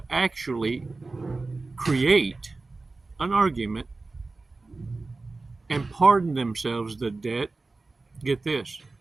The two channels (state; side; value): quieter; left; 3.5 dB